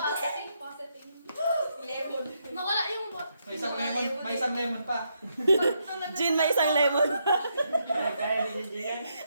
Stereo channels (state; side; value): inverted; both; correlation -0.79